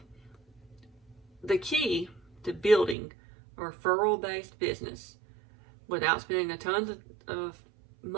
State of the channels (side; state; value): left; drops out; at 3.0 s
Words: key to building a referral-based business without spending a ton of